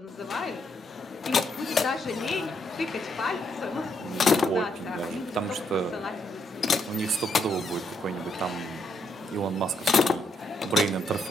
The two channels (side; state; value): both; normal; correlation 0.76